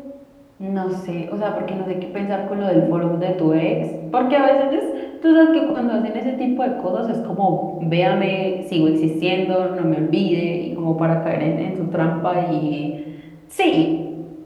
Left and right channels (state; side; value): identical; both; correlation 1.00